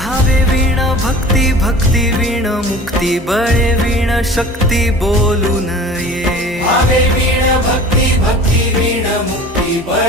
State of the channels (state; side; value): normal; both; correlation 0.42